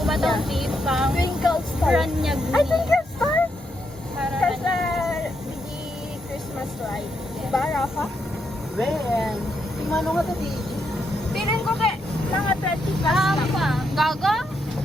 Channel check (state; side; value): normal; both; correlation 0.80